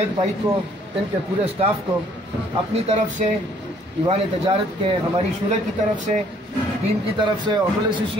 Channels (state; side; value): normal; both; correlation 0.61